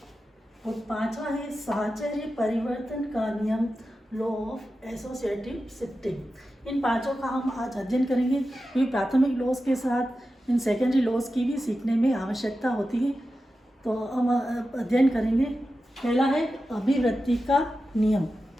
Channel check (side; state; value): both; normal; correlation 0.92